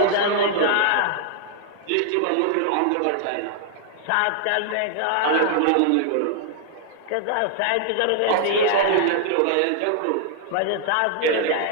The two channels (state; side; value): different; both; correlation 0.00